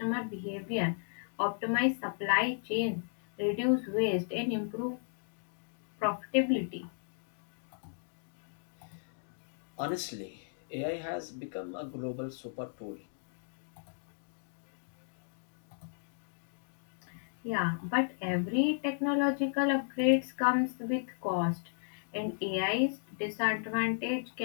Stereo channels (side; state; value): right; silent; digital silence